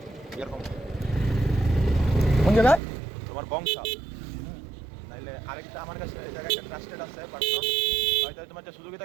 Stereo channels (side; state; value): left; drops out; at 2.8 s